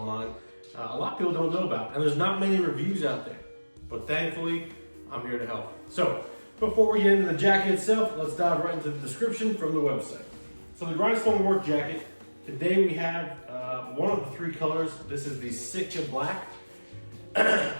a lot of people don't know about, and there's not many reviews out there. But thankfully, I'm here to help. So, before we get into the jacket itself, let's dive right into the description from the website. So the Grindstone Work Jacket, today we have one of the three colors. This is the SITKA Black.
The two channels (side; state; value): both; inverted; correlation -1.00